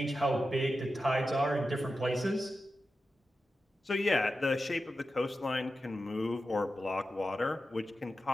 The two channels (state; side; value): normal; both; correlation 0.91